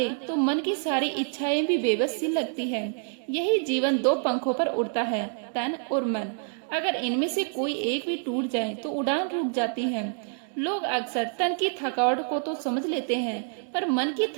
तो मन की सारी इच्छाएं भी बेबस सी लगती है। यही जीवन 2 पंखों पर उड़ता है, तन और मन। अगर इनमें से कोई एक भी टूट जाए तो उड़ान रुक जाती है। लोग अक्सर तन की थकावट को तो समझ लेते हैं, पर मन की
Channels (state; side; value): silent; left; 60 dB below the other